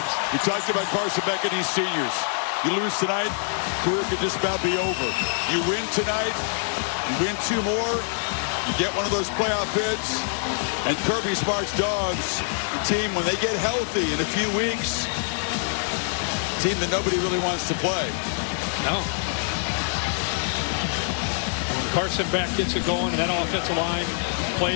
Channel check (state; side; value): silent; right; digital silence